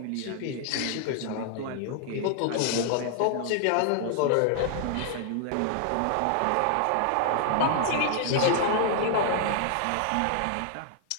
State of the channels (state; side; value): different; both; correlation 0.00